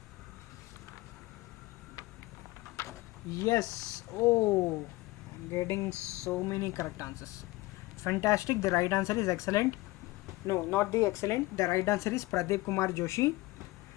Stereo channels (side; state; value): right; quieter; 20.3 dB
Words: Yes. Oh, I'm getting so many correct answers. Fantastic. The right answer is excellent. No, not the excellent. The right answer is Pradeep Kumar Joshi.